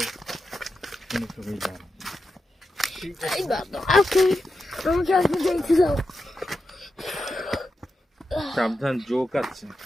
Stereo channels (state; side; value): normal; both; correlation 0.89